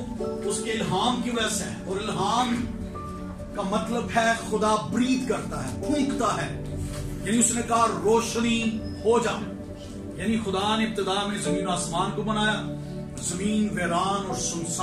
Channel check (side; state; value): both; identical; correlation 1.00